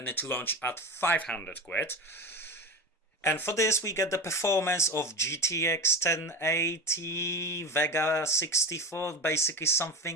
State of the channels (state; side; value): normal; both; correlation 0.26